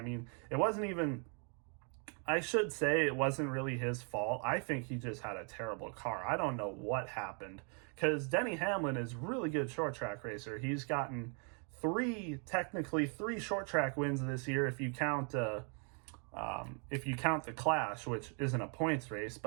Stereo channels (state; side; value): quieter; left; 39.1 dB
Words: mean, it wasn't even... I should say it wasn't really his fault. I think he just had a terrible car. I don't know what happened, because Denny Hamlin is really good short track racer. He's gotten technically three short track wins this year if you count the Clash, which isn't a points race.